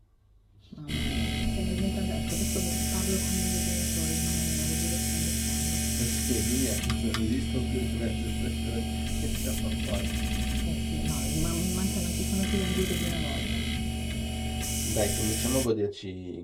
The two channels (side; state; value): both; identical; correlation 1.00